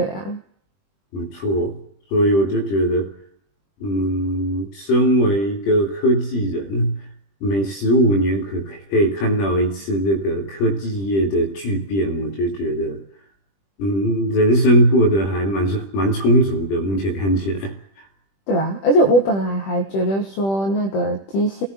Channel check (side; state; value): right; late; 20 ms